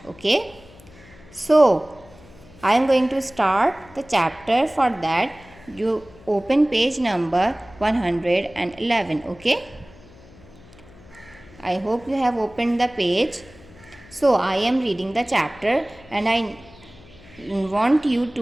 Okay. So I am going to start the chapter. For that you open page number 111. Okay. I hope you have opened the page. So I am reading the chapter and I want you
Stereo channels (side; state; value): left; noise; hum, 23 dB below the sound